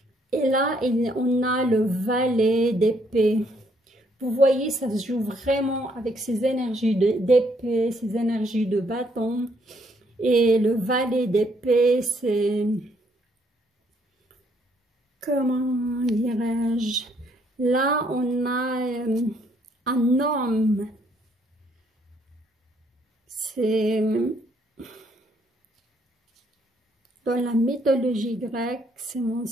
Et là, on a le valet d'épée. Vous voyez, ça se joue vraiment avec ces énergies d'épée, ces énergies de bâton. Et le valet d'épée, c'est, comment dirais-je, là, on a un homme. C'est dans la mythologie grecque, si mon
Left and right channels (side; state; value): both; normal; correlation 0.69